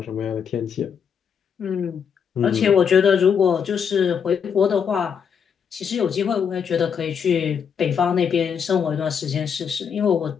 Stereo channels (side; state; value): right; quieter; 7.1 dB